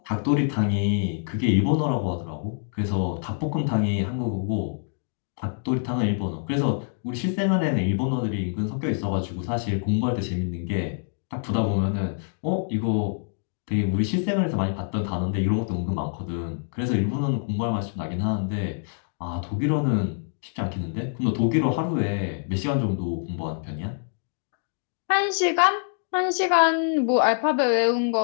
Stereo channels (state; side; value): silent; right; digital silence